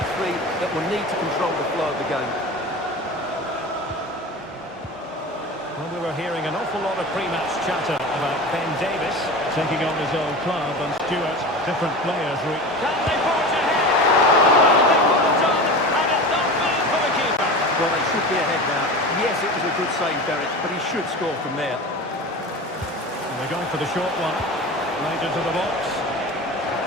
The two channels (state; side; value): normal; both; correlation 0.31